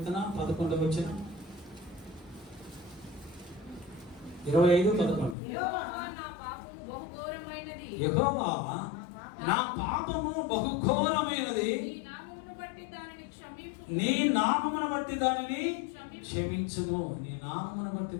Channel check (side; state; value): right; drops out; at 5.4 s